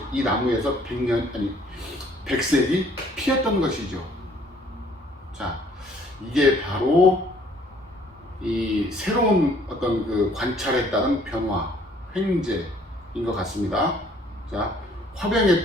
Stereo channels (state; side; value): normal; both; correlation 0.60